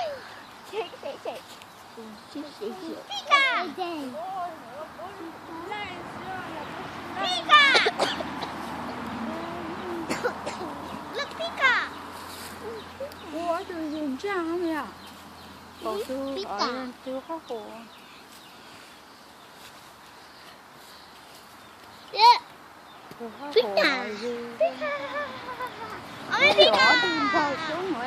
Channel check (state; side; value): identical; both; correlation 1.00